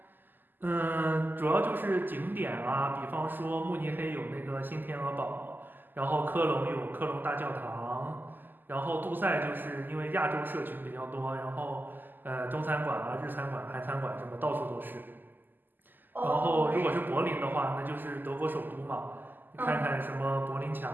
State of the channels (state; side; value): late; left; 0.089 ms